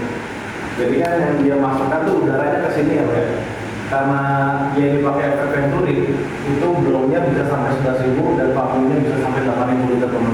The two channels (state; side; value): identical; both; correlation 1.00